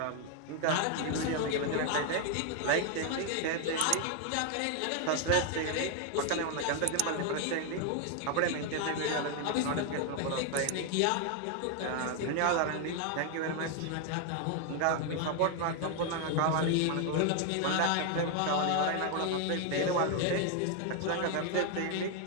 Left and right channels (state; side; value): different; both; correlation 0.01